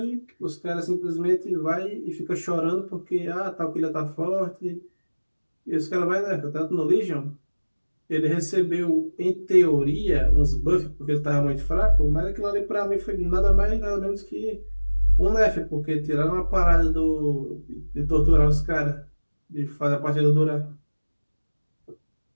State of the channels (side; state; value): both; inverted; correlation -1.00